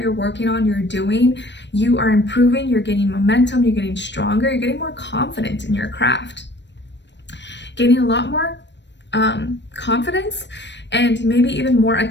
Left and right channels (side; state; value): right; late; 0.52 ms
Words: working on, you're doing, you are improving, you're gaining momentum, you're getting stronger, you're getting more confident in your craft, gaining a lot more confidence, and maybe even more